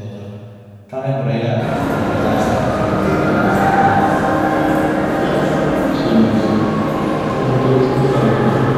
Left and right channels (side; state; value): both; identical; correlation 1.00